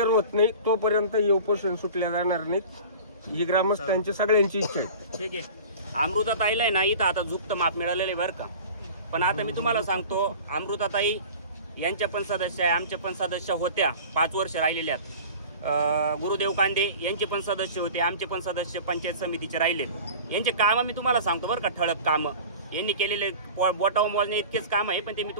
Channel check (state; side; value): inverted; both; correlation -0.39